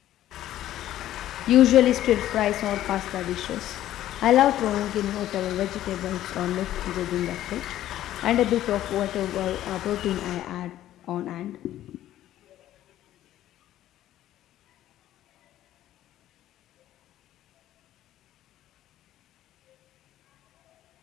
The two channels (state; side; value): quieter; right; 13.1 dB